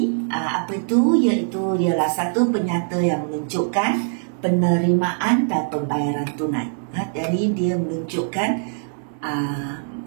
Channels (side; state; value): left; silent; digital silence